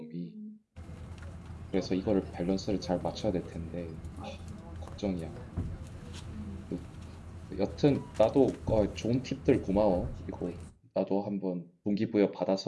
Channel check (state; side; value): identical; both; correlation 1.00